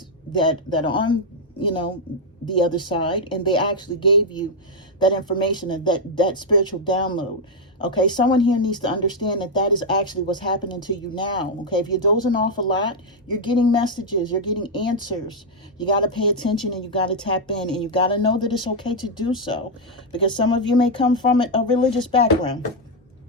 that are on, you know, the other side, and they actually gave you that information and that spiritual download. Okay, someone here needs to understand that is actually what's happening to you now. Okay, if you're dozing off a lot, you're getting messages, you're getting answers. You got to pay attention and you got to tap in, and you got to know that it's okay to do so, because some of you may come from a religious background.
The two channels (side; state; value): both; normal; correlation 0.00